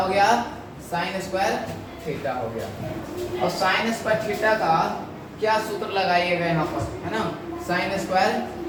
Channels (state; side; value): identical; both; correlation 1.00